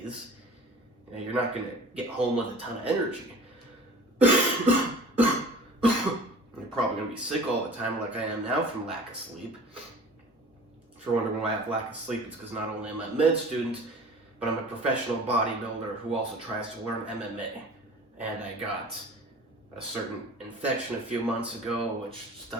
you're not going to get home with a ton of energy. You're probably going to be sick all the time like I am now from lack of sleep. If you're wondering why I have lack of sleep, it's because not only am I a med student, but I'm a professional bodybuilder who also tries to learn MMA. And I got a certain infection a few months ago, which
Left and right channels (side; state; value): both; normal; correlation 0.42